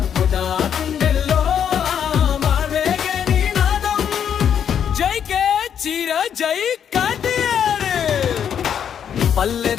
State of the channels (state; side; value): quieter; right; 8.5 dB